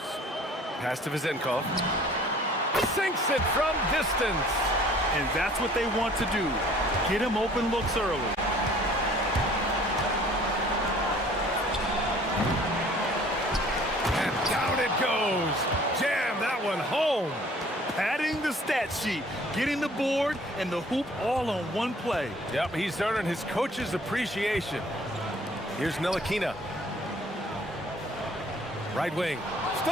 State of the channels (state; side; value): normal; both; correlation 0.53